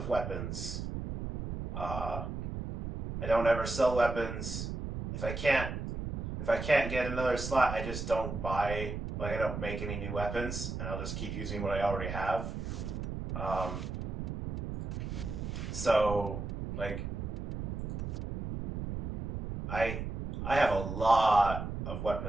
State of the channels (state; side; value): noise; right; rumble, 4 dB below the sound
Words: weapons. I don't ever sell weapons. If I can't get another slot, I just don't buy. Like, I don't make any new weapons, and I'll just keep using what I already have. So, like, I have a lot of